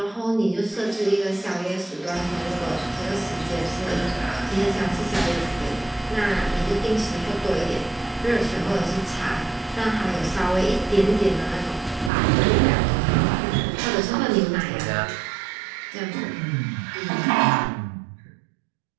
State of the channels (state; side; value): drops out; left; at 12.1 s